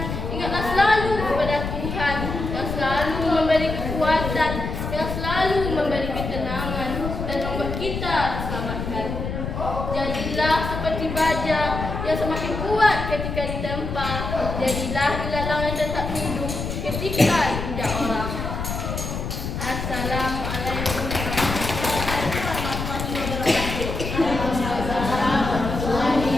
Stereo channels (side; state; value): left; noise; rumble, 5 dB below the sound